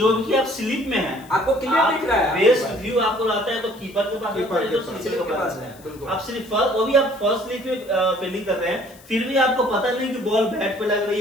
भी आप स्लिप में हैं, आपको क्लियर दिख रहा है, बेस्ट व्यू आपको आता है तो कीपर के पास कीपर आता है, के तो पास, स्लिप के पास बिल्कुल। है। आप सिर्फ फर्स्ट, वो भी आप फर्स्ट स्लिप में फील्डिंग कर रहे हैं, फिर भी आपको पता नहीं कि बॉल बैट पे लग रही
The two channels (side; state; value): left; noise; hiss, 24 dB below the sound